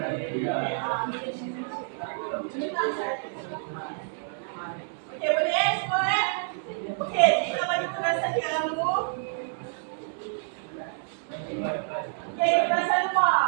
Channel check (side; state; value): left; silent; 59 dB below the other